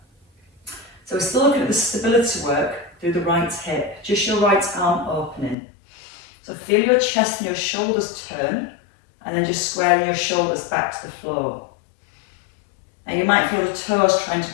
So we're still looking at the stability work through the right hip, just your right arm opening. So feel your chest and your shoulders turn, and then just squaring your shoulders back to the floor. Now you might feel the toes trying to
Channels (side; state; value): right; drops out; at 5.6 s